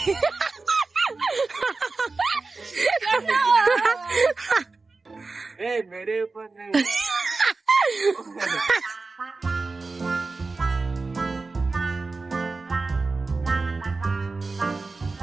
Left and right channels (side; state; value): left; quieter; 3.8 dB